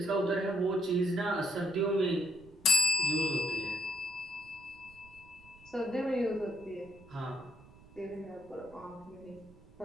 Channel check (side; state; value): right; noise; rumble, 24 dB below the sound